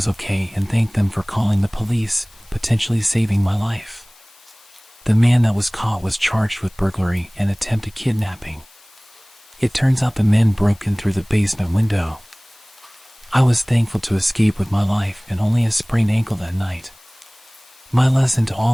okay and thanked them for calling the police, potentially saving my life. The man that was caught was charged with burglary and attempted kidnapping. It turns out the men broke in through the basement window. I was thankful to escape with my life and only a sprained ankle that night. My lesson to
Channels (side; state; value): left; noise; hiss, 27 dB below the sound